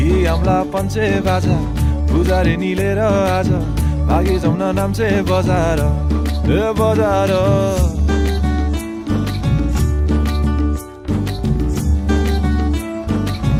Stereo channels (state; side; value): identical; both; correlation 1.00